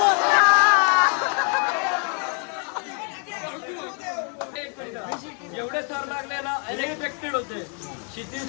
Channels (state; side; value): quieter; right; 39.7 dB